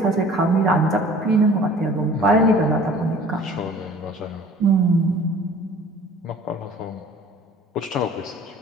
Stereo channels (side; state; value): both; normal; correlation 0.48